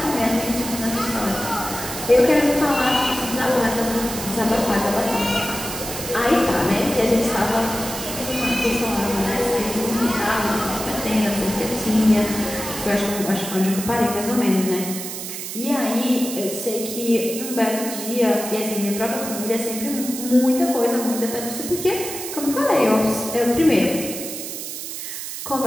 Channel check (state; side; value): noise; right; hiss, 7 dB below the sound